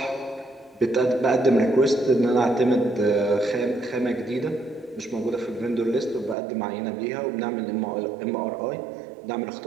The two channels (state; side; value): drops out; left; at 6.4 s